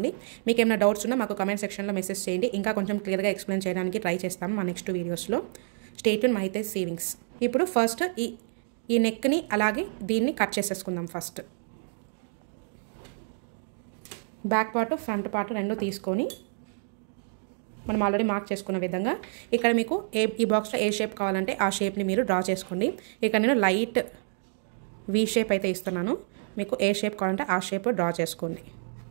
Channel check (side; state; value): left; silent; digital silence